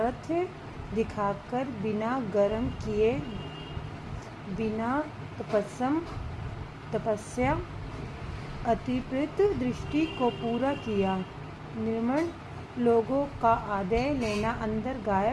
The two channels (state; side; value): identical; both; correlation 1.00